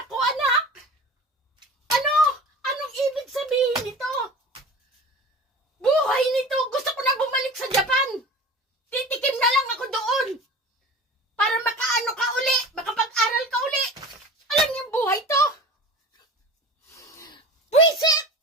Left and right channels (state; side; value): normal; both; correlation 0.37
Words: ko, anak? Ano? Anong ibig sabihin nito?